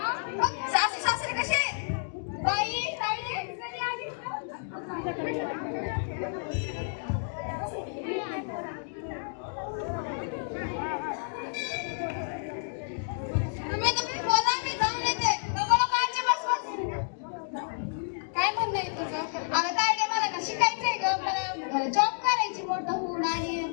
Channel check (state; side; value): silent; right; digital silence